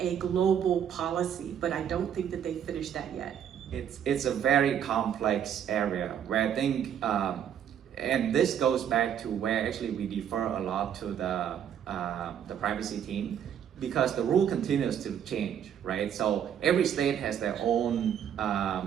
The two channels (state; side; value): quieter; left; 9.0 dB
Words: global policy, but I don't think that they finished that yet. it's a very complex area where I think, and this goes back to where actually we defer a lot to the privacy team, because the rule continues to change, right? So every state has their own